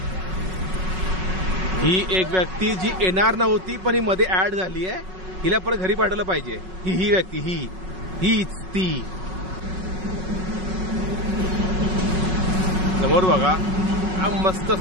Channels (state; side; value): late; left; 5.4 ms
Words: ही एक व्यक्ती जी येणार नव्हती पण ही मध्ये ऍड झाली आहे, हिला परत घरी पाठवलं पाहिजे. ही व्यक्ती हीच ती. समोर बघा, मस्त